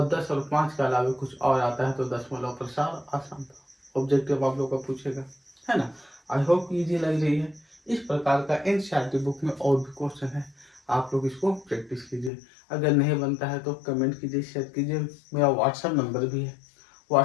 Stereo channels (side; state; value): right; drops out; at 12.3 s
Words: 10 और 5 के अलावा कुछ और आता है तो दशमलव प्रसार अशांत। ऑब्जेक्टिव आप लोग का पूछेगा, है ना। आई होप इजी लग रही है। इस प्रकार का एनसीईआरटी बुक में और भी क्वेश्चन है, आप लोग इसको प्रैक्टिस कीजिए। अगर नहीं बनता है तो कमेंट कीजिए, शेयर कीजिए। मेरा व्हाट्सएप नंबर भी है,